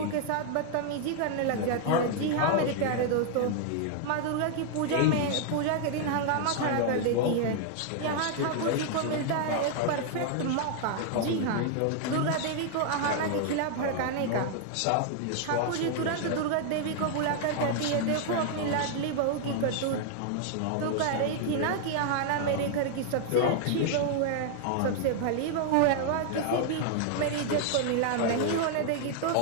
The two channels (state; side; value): different; both; correlation 0.00